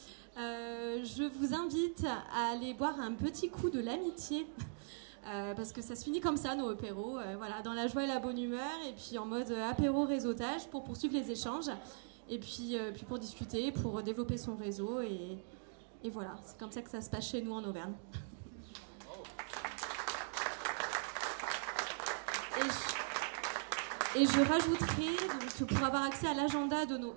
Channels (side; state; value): left; silent; digital silence